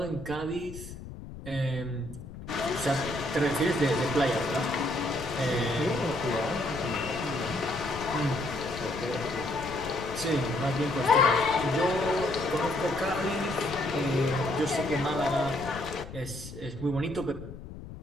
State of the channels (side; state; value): left; noise; rumble, 12 dB below the sound